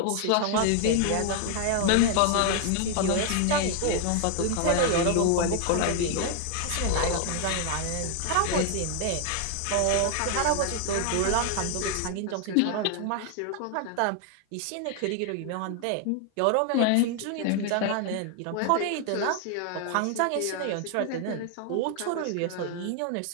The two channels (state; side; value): different; both; correlation 0.00